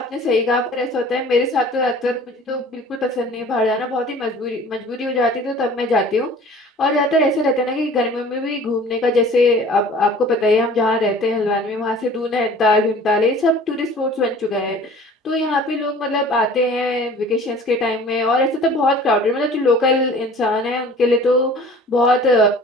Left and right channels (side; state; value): both; normal; correlation 0.47